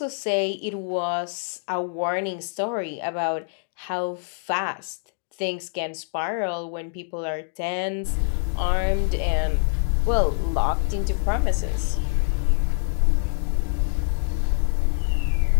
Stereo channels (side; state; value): right; silent; digital silence